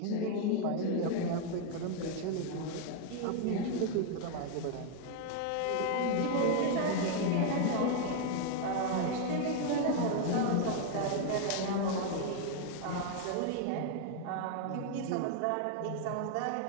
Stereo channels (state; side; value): different; both; correlation 0.00